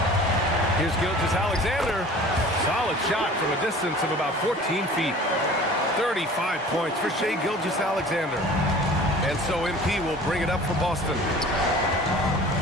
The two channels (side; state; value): both; normal; correlation 0.44